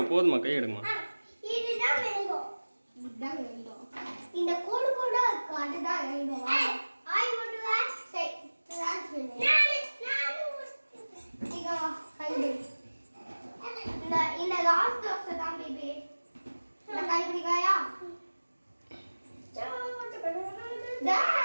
போதுமா கை எடுங்கம்மா. இதுதான் மேங்கோ இதுதான் மேங்கோ இந்த கோடு கோடா இருக்கு அதுதான் மேங்கோ ஆய் மட்டும் சரி இங்க கைடு இந்த லாஸ்ட் தோசை தான் பேபி இந்த கை பிடிக்காயா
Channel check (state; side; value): inverted; both; correlation -1.00